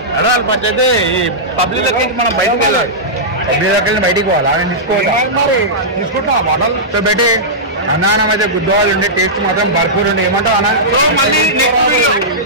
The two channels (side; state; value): both; normal; correlation -0.13